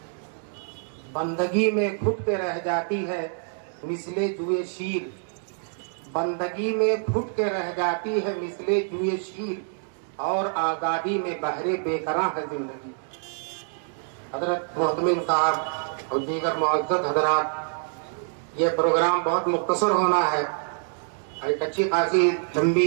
بندگی میں گھٹ کے رہ جاتی ہے مثل جوئے شیر. بندگی میں گھٹ کے رہ جاتی ہے مثل جوئے شیر اور آزادی میں بہرے بے قرار ہے زندگی. حضرت محتمم صاحب اور دیگر معزز حضرات، یہ پروگرام بہت مختصر ہونا ہے. ایک اچھی خاصی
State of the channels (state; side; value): silent; left; 61 dB below the other